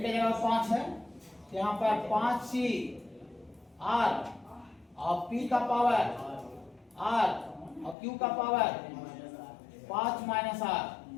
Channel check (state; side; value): drops out; right; at 8.0 s